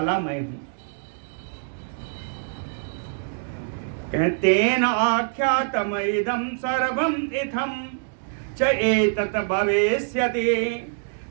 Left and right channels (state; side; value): silent; left; digital silence